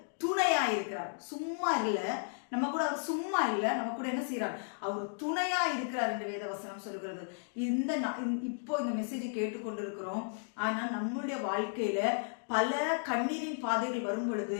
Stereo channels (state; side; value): silent; right; digital silence